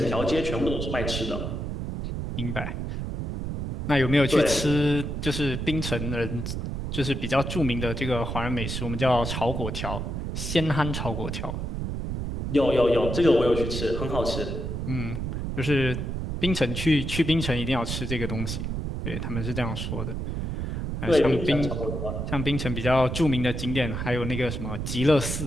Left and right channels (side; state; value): right; noise; rumble, 3 dB below the sound